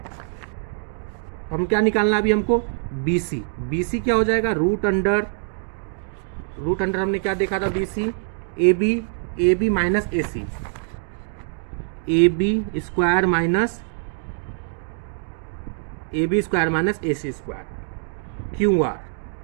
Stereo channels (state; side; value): silent; left; 63 dB below the other